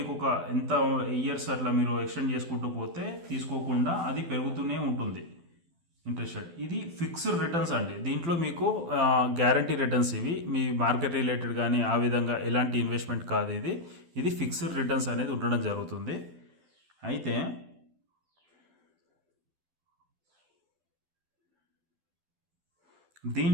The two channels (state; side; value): late; left; 12 ms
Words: ఒక ఎంత ఇయర్స్ అట్లా మీరు ఎక్స్టెండ్ చేసుకుంటూ పోతే తీసుకోకుండా అది పెరుగుతూనే ఉంటుంది ఇంట్రెస్ట్ రేట్. ఇది ఫిక్స్డ్ రిటర్న్స్ అండి. దీంట్లో మీకు గ్యారంటీ రిటర్న్స్, ఇవి మీ మార్కెట్ రిలేటెడ్ కానీ ఆ విధంగా ఎలాంటి ఇన్వెస్ట్మెంట్ కాదు. ఇది ఫిక్స్డ్ రిటర్న్స్ అనేది ఉండడం జరుగుతుంది. అయితే